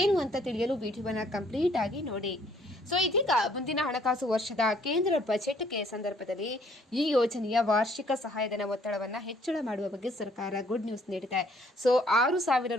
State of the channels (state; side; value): normal; both; correlation 0.63